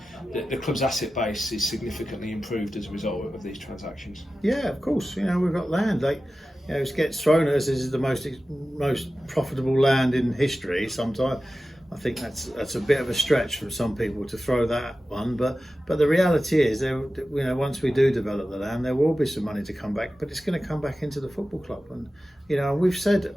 club's asset base is significantly improved as a result of these transactions. Yeah, of course. We've got land. It gets thrown at us as the most profitable land in history. Sometimes I think that's a bit of a stretch from some people to throw that one. But the reality is, once we do develop the land, there will be some money to come back. But it's going to come back into the football club. And we've said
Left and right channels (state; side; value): normal; both; correlation 0.94